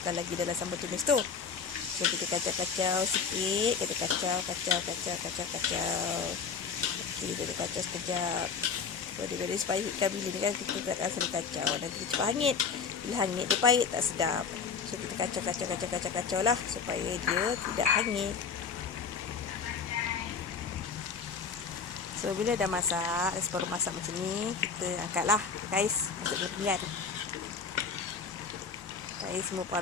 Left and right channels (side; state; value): right; quieter; 5.6 dB